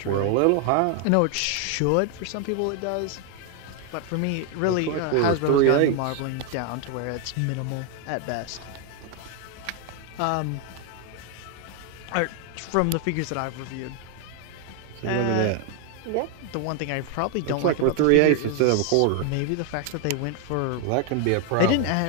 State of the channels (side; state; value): both; different; correlation 0.01